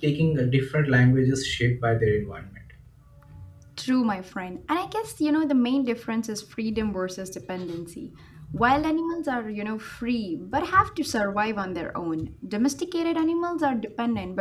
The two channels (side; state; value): both; identical; correlation 1.00